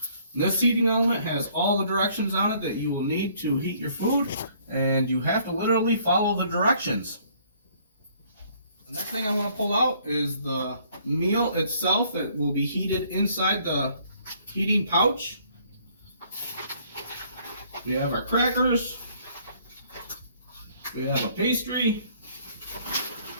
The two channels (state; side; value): inverted; both; correlation -0.62